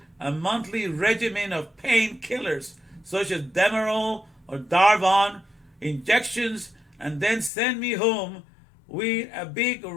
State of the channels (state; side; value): drops out; right; at 7.5 s